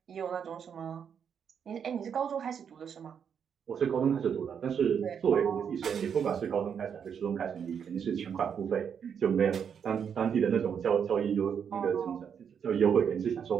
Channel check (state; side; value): quieter; left; 7.5 dB